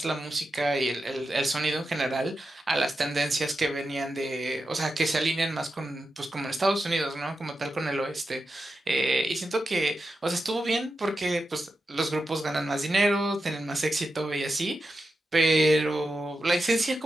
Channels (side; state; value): both; normal; correlation 0.89